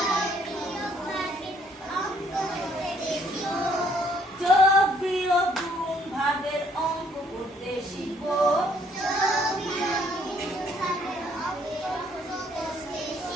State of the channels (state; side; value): normal; both; correlation 0.65